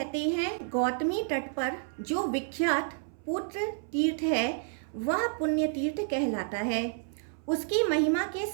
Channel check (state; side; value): silent; left; 58 dB below the other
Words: हैं गौतमी तट पर जो विख्यात पुत्र तीर्थ है वह पुण्य तीर्थ कहलाता है। उसकी महिमा के